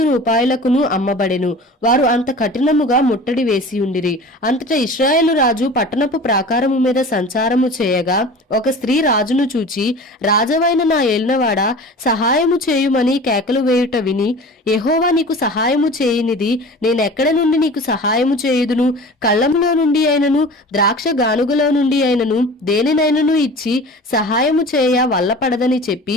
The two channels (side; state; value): both; normal; correlation 0.39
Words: రూపాయలకును అమ్మబడెను. వారు అంత కఠినముగా ముట్టడి వేసి ఉండిరి. అంతటా ఇశ్రాయేలు రాజు పట్టణపు ప్రాకారము మీద సంచారము చేయగా ఒక స్త్రీ రాజును చూచి, రాజవైన నా ఏలినవాడా, సహాయము చేయుమని కేకలు వేయుట విని, యెహోవా నీకు సహాయము చేయనిది నేనెక్కడ నుండి నీకు సహాయము చేయుదును? కళ్ళములో నుండి అయినను ద్రాక్ష గానుగలో నుండి అయినను దేనినైనను ఇచ్చి సహాయము చేయ వల్లపడదని చెప్పి